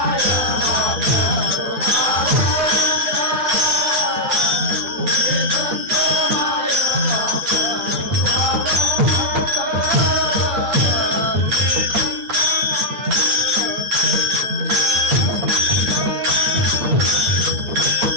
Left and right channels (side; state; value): left; late; 8.9 ms